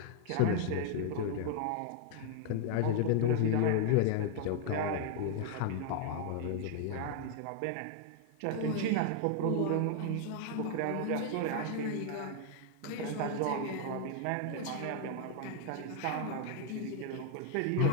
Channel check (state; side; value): different; both; correlation 0.00